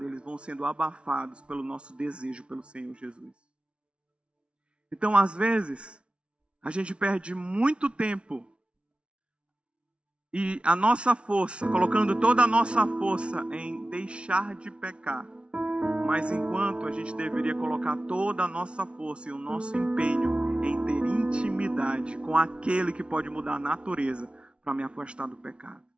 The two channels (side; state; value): left; late; 0.059 ms